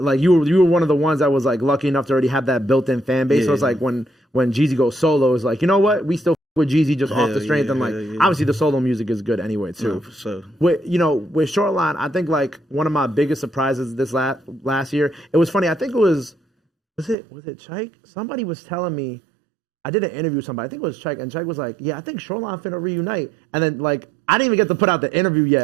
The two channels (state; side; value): drops out; left; at 17.2 s